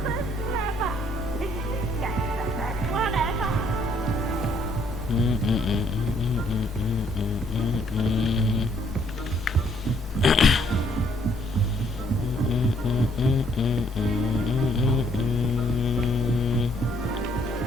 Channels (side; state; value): both; normal; correlation 0.67